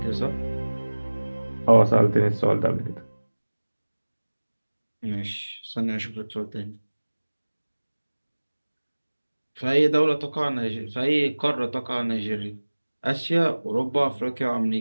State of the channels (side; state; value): both; inverted; correlation -1.00